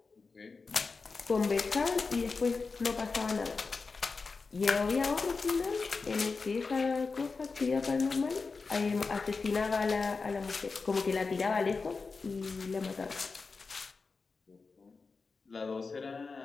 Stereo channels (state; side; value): quieter; right; 4.4 dB